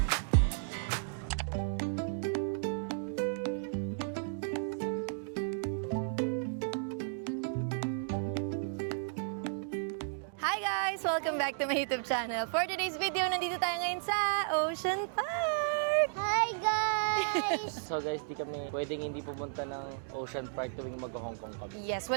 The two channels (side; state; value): left; silent; digital silence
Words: Hi guys! Welcome back to my YouTube channel. For today's video, nandito tayo ngayon sa Ocean Park! Hi guys! So guys, di kami pwedeng hindi pumunta ng Ocean Park tuwing mag-Hong Kong kami. Yes,